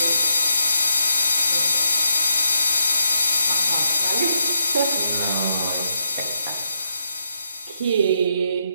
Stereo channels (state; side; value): inverted; both; correlation -0.79